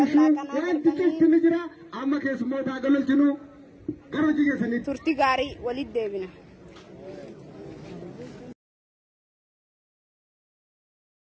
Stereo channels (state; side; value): identical; both; correlation 1.00